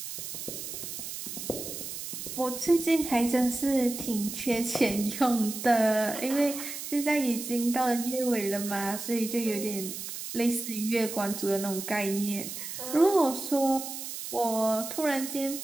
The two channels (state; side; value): noise; right; hiss, 8 dB below the sound